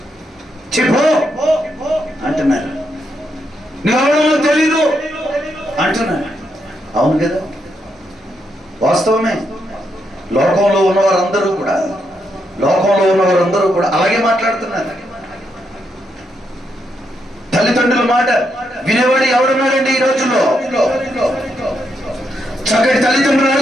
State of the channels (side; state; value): both; normal; correlation 0.80